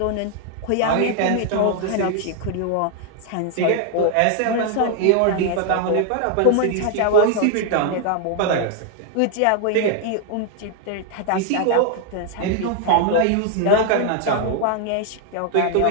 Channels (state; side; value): different; both; correlation 0.00